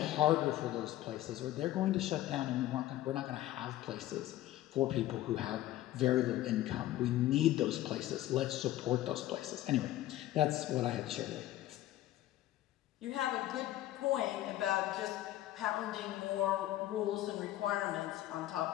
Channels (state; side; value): quieter; right; 14.5 dB